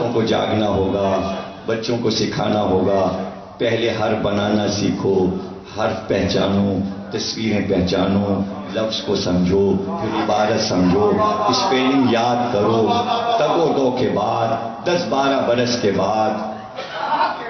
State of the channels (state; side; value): identical; both; correlation 1.00